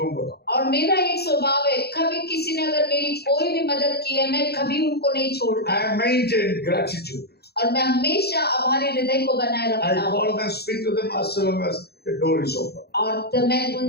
that. और मेरा एक स्वभाव है कभी किसी ने अगर मेरी कोई भी मदद की है मैं कभी उनको नहीं छोड़ता I maintain gratitude. और मैं हमेशा आभारी हृदय को बनाए I रखता हूँ। call them, speak to them as long as the door is open. और तो मैं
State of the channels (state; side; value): late; right; 0.47 ms